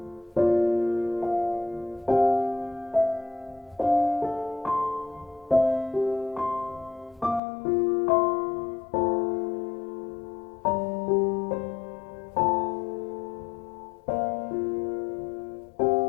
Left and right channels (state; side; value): drops out; right; at 7.4 s